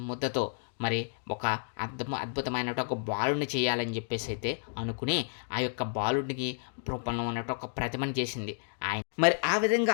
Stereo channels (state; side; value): silent; right; digital silence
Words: మరి ఒక అద్భుతమైనటువంటి ఒక బాలుడిని చేయాలని చెప్పేసి అయితే అనుకుని ఆ యొక్క బాలుడికి రూపంలో ఉన్నట్టు ఒక ప్రతిమని చేసింది ఆయన. మరి ఆ